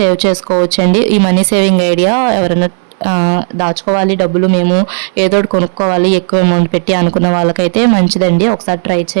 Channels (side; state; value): left; silent; digital silence